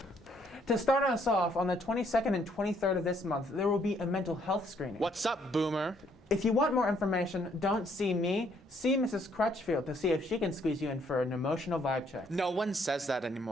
To start us off, on the 22nd and 23rd of this month, there will be a mental health screening. What's up, boomer? If you want more information, don't see me, see Mrs. Crutchfield to see if she can squeeze you in for an emotional vibe check. No one says that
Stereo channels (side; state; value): both; normal; correlation 0.68